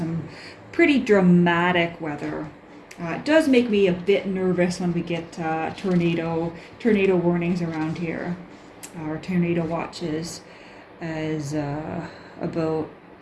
pretty dramatic weather. It does make me a bit nervous when we get tornado warnings around here, or tornado watches, as about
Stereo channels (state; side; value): identical; both; correlation 1.00